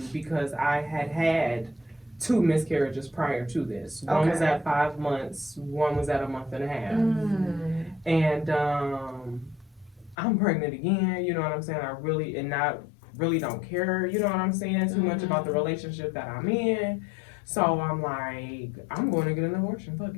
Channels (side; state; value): right; drops out; at 10.2 s